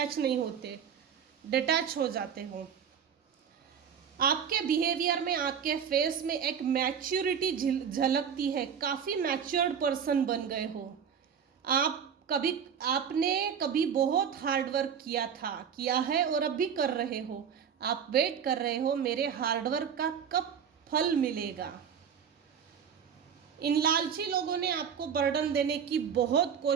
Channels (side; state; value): left; quieter; 7.6 dB